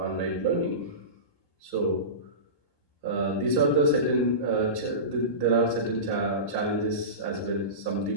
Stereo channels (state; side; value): late; right; 1.2 ms